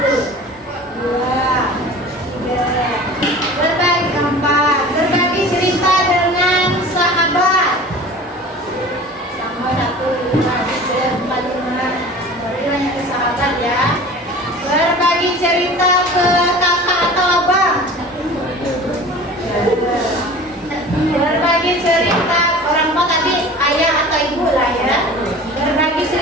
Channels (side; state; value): both; normal; correlation 0.40